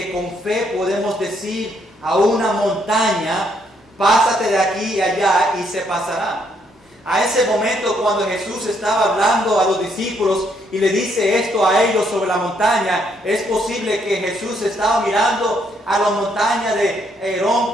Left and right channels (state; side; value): normal; both; correlation 0.72